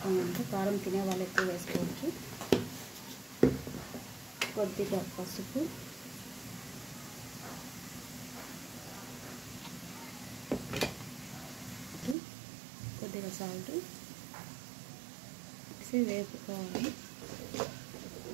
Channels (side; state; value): left; drops out; at 12.2 s